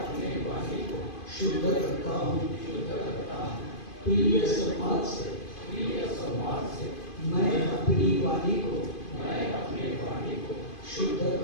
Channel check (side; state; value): right; late; 2.5 ms